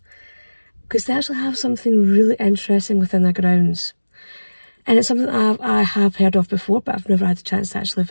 because they actually have something really interesting within their grounds. And it's something that I have heard of before, but I've never had the chance to actually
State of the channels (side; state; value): both; inverted; correlation -1.00